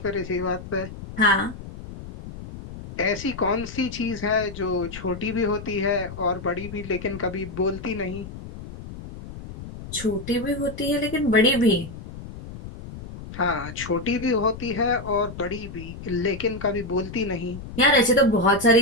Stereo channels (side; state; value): left; noise; rumble, 12 dB below the sound